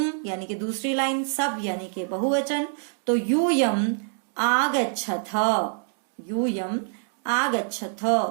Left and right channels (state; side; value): silent; left; digital silence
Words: यानी कि दूसरी लाइन, सब यानी कि बहुवचन, तो यूयम आगच्छथ, यूयम आगच्छथ।